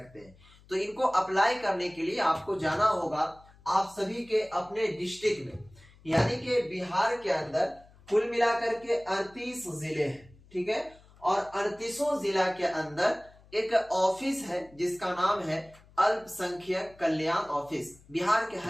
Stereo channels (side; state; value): left; noise; hum, 26 dB below the sound